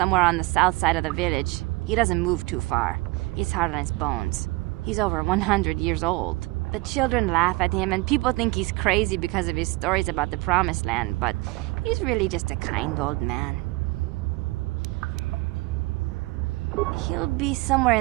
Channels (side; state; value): left; quieter; 23.1 dB